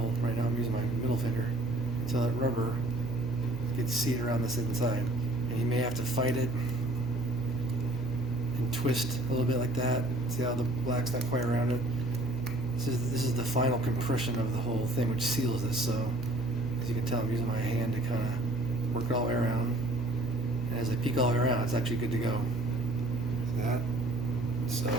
right now I'm using my middle finger, until that rubber gets seated around this inside. And you may have to fight it twist a little bit like that. See how the black's not quite around it? This is the final compression of the whole thing, which seals this. So as you can tell, I'm using my hand to kind of work it all the way around. And as I peek all the way around, it's actually good to go. See that? So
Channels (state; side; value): noise; right; hum, 12 dB below the sound